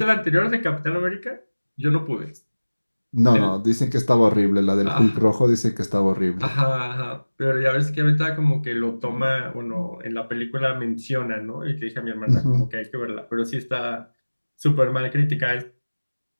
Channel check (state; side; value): inverted; both; correlation -1.00